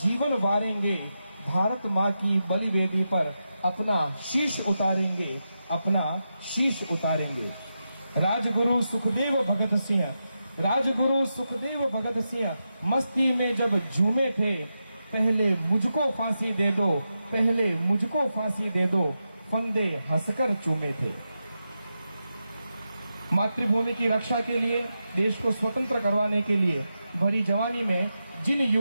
जीवन वारेंगे। भारत माँ की बलिवेदी पर अपना शीश उतारेंगे, अपना शीश उतारेंगे। राजगुरु सुखदेव भगत सिंह, राजगुरु सुखदेव भगत सिंह मस्ती में जब झूमे थे, पहले मुझको फांसी दे दो, पहले मुझको फांसी दे दो, फंदे हंसकर चूमे थे। मातृभूमि की रक्षा के लिए, देश को स्वतंत्र करवाने के लिए भरी जवानी में जिन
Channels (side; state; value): both; inverted; correlation -0.89